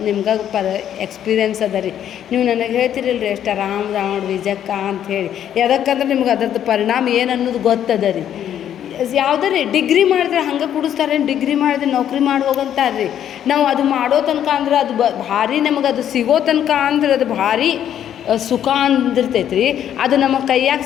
ನಿಮ್ಗೆ ಎಕ್ಸ್ಪೀರಿಯೆನ್ಸ್ ಅದ ರೀ. ನೀವು ನನಗೆ ಹೇಳ್ತಿರಲ್ರಿ ಎಷ್ಟು ಆರಾಮ್ ನೋಡ್ರಿ ಜಕ್ಕ ಅಂಥೇಳಿ. ಯಾವ್ದಕ್ಕಂದ್ರೆ ನಿಮ್ಗೆ ಅದರದ್ದು ಪರಿಣಾಮ ಏನು ಅನ್ನೋದು ಗೊತ್ತದ ರೀ. ಯಾವುದೇ ಡಿಗ್ರಿ ಮಾಡಿದ್ರೆ ಹಂಗೆ ಕುಡಿಸ್ತಾರೆ, ಡಿಗ್ರಿ ಮಾಡಿದ್ರೆ ನೌಕರಿ ಮಾಡಿ ಹೋಗಂತಾರೆ ರೀ. ನಾವು ಅದು ಮಾಡೋ ತನಕ ಅಂದ್ರೆ ಅದು ಭಾರಿ ನಮಗೆ ಅದು ಸಿಗೋ ತನಕ ಅಂದ್ರೆ ಅದು ಭಾರಿ ಸುಖ ಅಂದಿರ್ತೈತೆ ರೀ. ಅದು ನಮ್ಮ ಕೈಯಾಗ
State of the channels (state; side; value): quieter; right; 10.1 dB